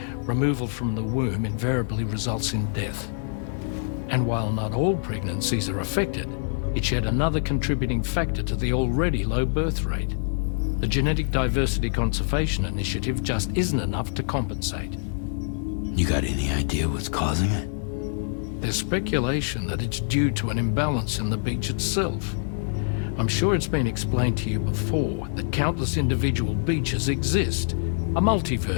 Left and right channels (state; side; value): silent; right; digital silence